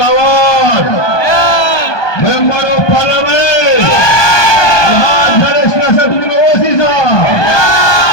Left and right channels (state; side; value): late; right; 1.2 ms